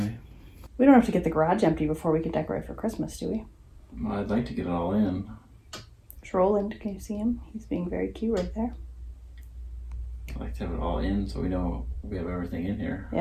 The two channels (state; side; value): identical; both; correlation 1.00